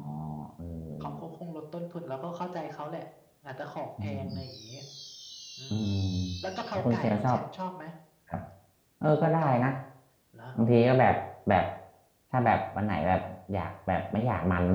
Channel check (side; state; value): both; identical; correlation 1.00